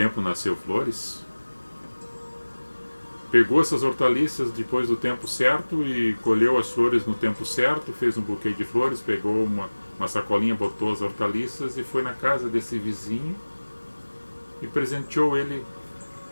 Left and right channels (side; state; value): both; inverted; correlation -1.00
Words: nasceu flores. Pegou essas hortaliças depois do tempo certo e colheu as flores no tempo certo, fez um buquê de flores, pegou uma sacolinha, botou as hortaliças e foi na casa desse vizinho e presenteou ele.